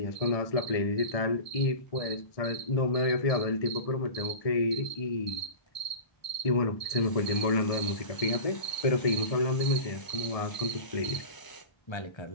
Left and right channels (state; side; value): late; right; 1.6 ms